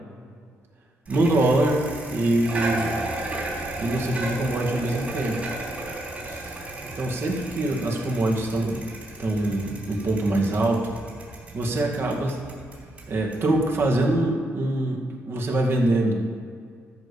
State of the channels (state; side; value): normal; both; correlation 0.79